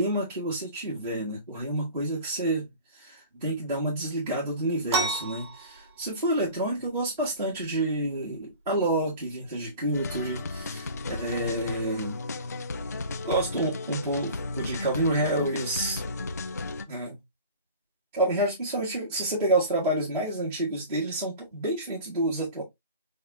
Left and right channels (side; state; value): both; inverted; correlation -0.41